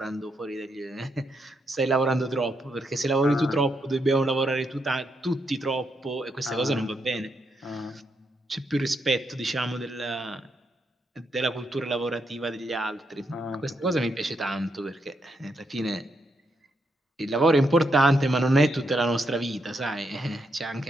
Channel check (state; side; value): normal; both; correlation 0.80